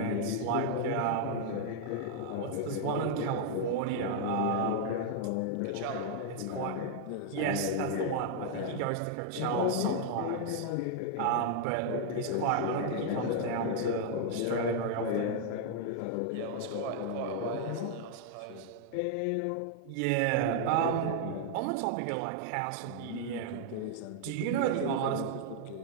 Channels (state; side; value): different; both; correlation 0.00